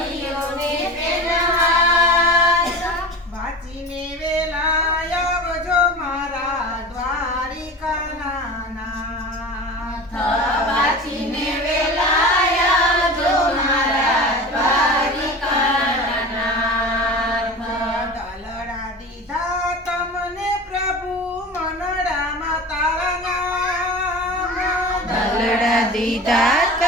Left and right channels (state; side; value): normal; both; correlation 0.33